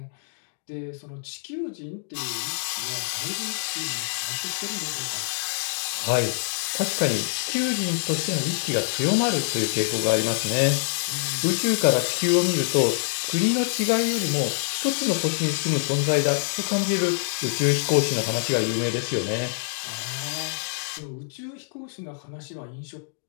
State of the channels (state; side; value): silent; right; digital silence